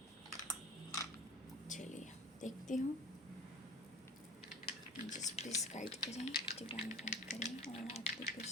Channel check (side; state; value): both; normal; correlation 0.39